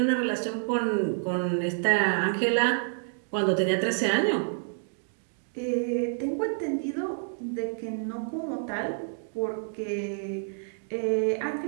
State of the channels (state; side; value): silent; left; digital silence